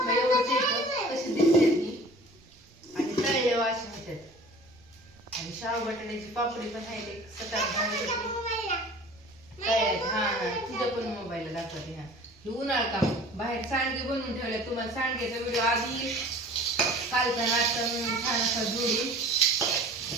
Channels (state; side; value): noise; right; rumble, 29 dB below the sound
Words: एवढंच येतं कशी दिसते ती आणि तळले वाशी होतात आणि शाव बटाट्याची पापडी पण आहे सकाळ काय हा तुझ्या पण मोबाईलला दाखवते हा हे उन्हाळ काम बाहेर सांडगे बनवून ठेवले तुम्हाला सांडग्याचा व्हिडिओ आधी कालचा नाश्ता म्हणून छान असा जोडून